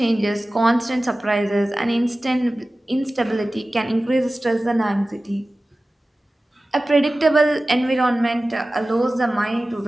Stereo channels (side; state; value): both; normal; correlation 0.96